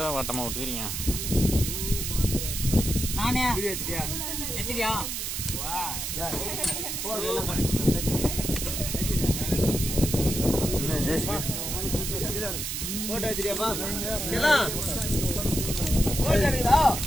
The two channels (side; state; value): right; noise; hiss, 3 dB below the sound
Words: வட்டமா விட்டுக்கிறீங்க? நானே எத்திரியா